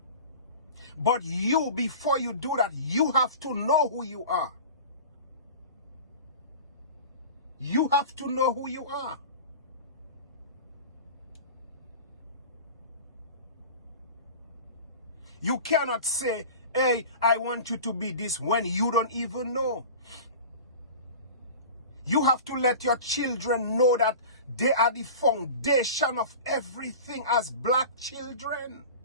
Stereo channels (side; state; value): both; inverted; correlation -0.36